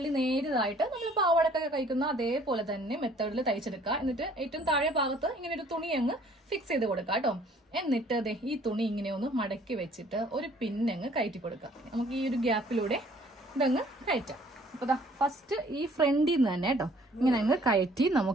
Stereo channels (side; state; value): both; normal; correlation 0.57